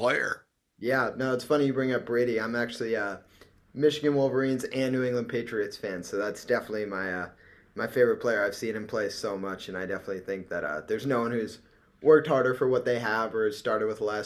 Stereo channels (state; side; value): identical; both; correlation 1.00